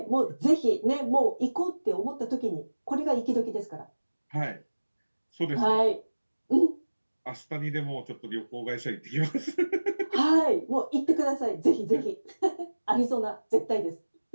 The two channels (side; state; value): both; inverted; correlation -1.00